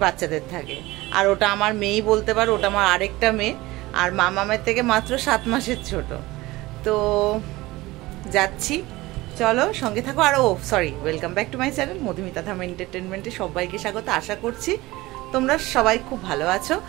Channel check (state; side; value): quieter; left; 19.6 dB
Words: বাচ্চাদের থাকে। আর ওটা আমার মেয়েই বলতে পারো, ওটা আমার আরেকটা মেয়ে, আর মামামের থেকে মাত্র 7 মাসের ছোট। তো যাচ্ছি, চলো সঙ্গে থাকো। আর sorry, welcome back to my channel Madhumita Dham এন্টারটেনমেন্টে সবাইকে স্বাগত। আশা করছি তোমরা সবাই খুব ভালো আছো।